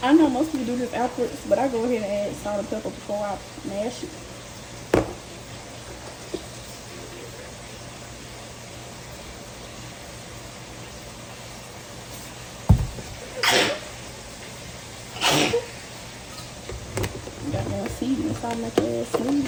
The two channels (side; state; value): both; identical; correlation 1.00